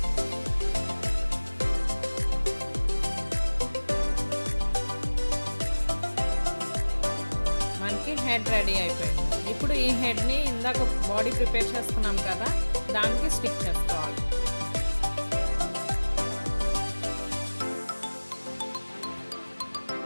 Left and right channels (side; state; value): both; inverted; correlation -1.00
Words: మనకి హెడ్ రెడీ అయిపోయింది. ఇప్పుడు ఈ హెడ్ని ఇందాక బాడీ ప్రిపేర్ చేసుకున్నాం కదా, దానికి స్టిక్ చేసుకోవాలి.